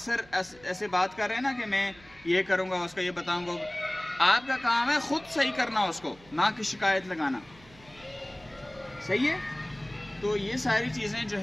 ایسے بات کر رہے ہیں نا کہ میں یہ کروں گا، اس کا یہ بتاؤں گا. آپ کا کام ہے خود صحیح کرنا اس کو، نہ کہ شکایت لگانا. صحیح ہے؟ تو یہ ساری چیزیں جو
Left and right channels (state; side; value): noise; right; hum, 25 dB below the sound